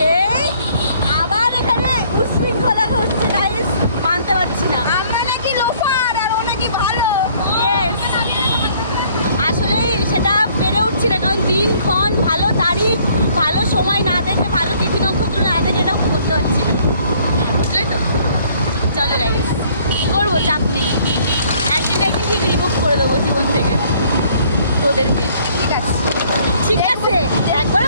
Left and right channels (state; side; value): inverted; both; correlation -0.60